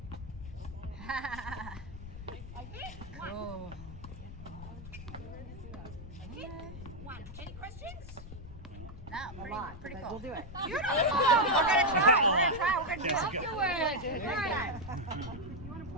I hit, one. Oh. I hit, one. Any questions? No, pretty cool. We'll do it. Beautiful. We're gonna try. We're gonna do it. Afterwards. All right.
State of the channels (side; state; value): left; noise; rumble, 12 dB below the sound